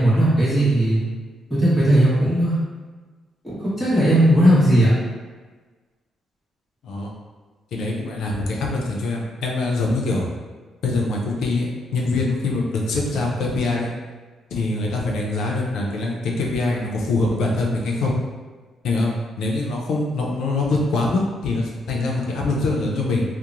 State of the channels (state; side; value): normal; both; correlation 0.77